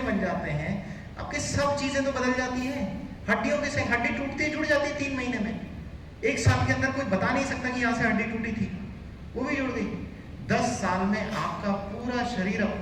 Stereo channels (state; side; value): identical; both; correlation 1.00